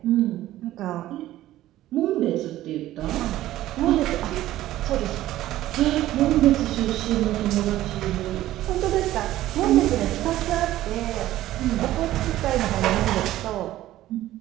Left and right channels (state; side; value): quieter; left; 14.6 dB